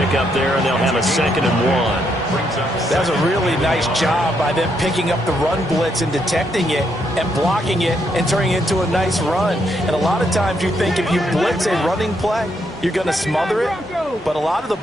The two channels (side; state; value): both; normal; correlation 0.76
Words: there, and they'll have a 2nd and 1. That was a really nice job by them picking up the run blitz and detecting it and blocking it and turning it into a nice run. And a lot of times you think if you blitz a running play, you're going to smother it. But a lot of the